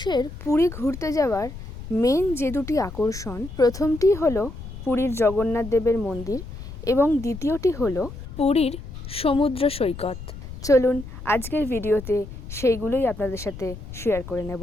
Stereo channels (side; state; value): left; noise; rumble, 11 dB below the sound